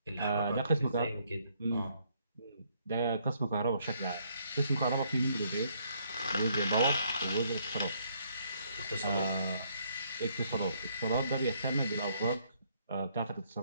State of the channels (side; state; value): both; inverted; correlation -0.69